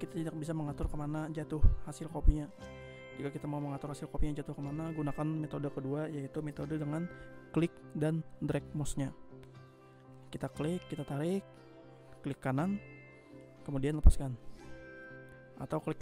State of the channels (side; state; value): both; identical; correlation 1.00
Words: tidak bisa mengatur kemana jatuh hasil kopinya. Jika kita mau mengatur hasil kopinya jatuh kemana, gunakan metode kedua, yaitu metode dengan klik dan drag mouse-nya. Kita klik, kita tarik, klik kanan, kemudian lepaskan. Atau klik